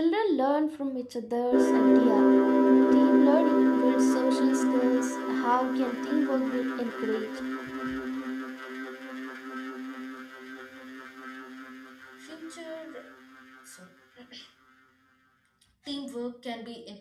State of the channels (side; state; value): both; identical; correlation 1.00